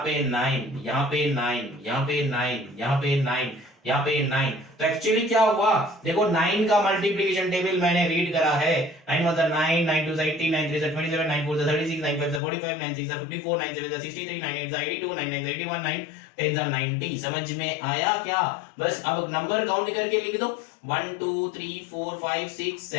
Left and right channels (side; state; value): right; drops out; at 12.4 s